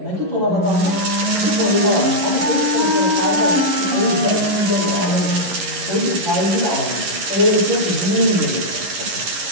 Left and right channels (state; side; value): late; left; 11 ms